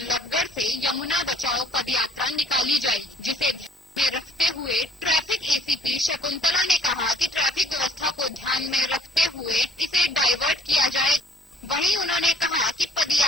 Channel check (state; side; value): normal; both; correlation 0.58